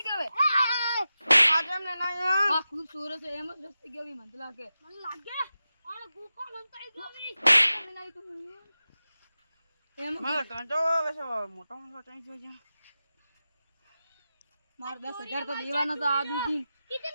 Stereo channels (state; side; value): inverted; both; correlation -0.93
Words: क्या है आज हमने ना हां खूबसूरत है एम दस्ती के भी मंतला के मन लागे और गुफा बनता है गमी मैं नहीं तो एम मैं कांटो वैसे मोटा मोटा चाहिए जो जा मार 10,000 तो देवाना था आदमी की